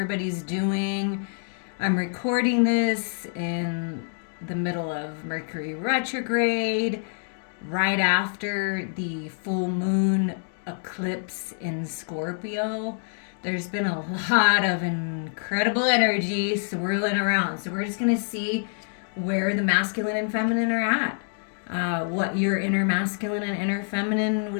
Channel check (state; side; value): silent; right; 61 dB below the other